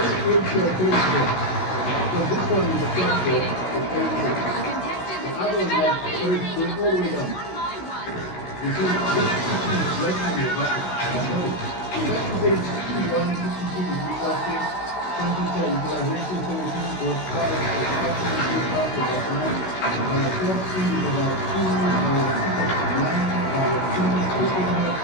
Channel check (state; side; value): late; right; 16 ms